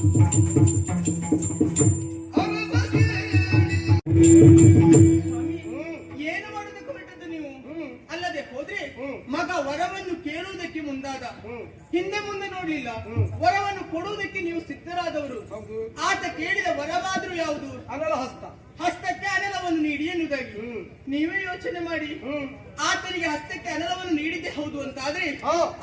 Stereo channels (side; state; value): both; identical; correlation 1.00